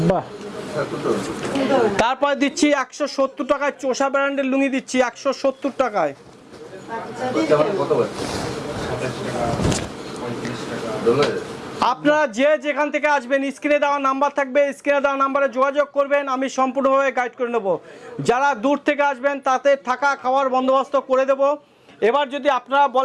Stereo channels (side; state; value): both; identical; correlation 1.00